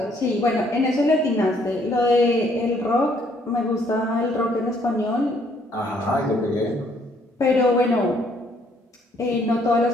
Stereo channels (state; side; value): normal; both; correlation 0.66